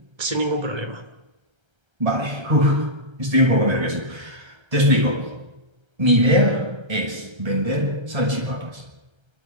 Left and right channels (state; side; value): late; left; 1.3 ms